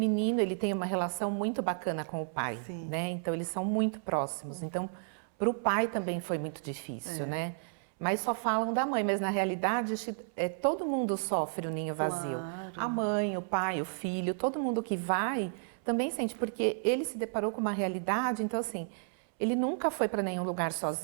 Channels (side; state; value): left; silent; 56 dB below the other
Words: ele tem uma relação muito bacana com o pai, né? Então eles são muito próximos. Então, para o pai também foi muito difícil, né? Mas só falam da mãe, mas na realidade todo mundo sofre o ninho vazio. A mãe, o pai, o filho, todo mundo que vai também sente, porque ele se deparou com uma realidade, então assim, ele nunca foi para nenhum lugar